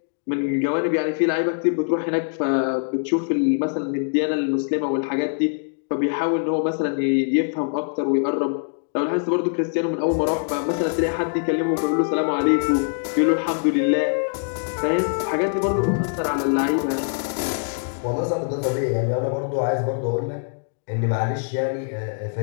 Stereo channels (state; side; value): silent; right; digital silence